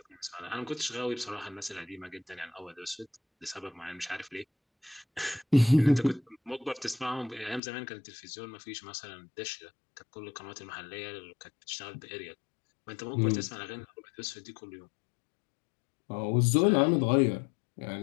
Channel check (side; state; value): right; drops out; at 7.6 s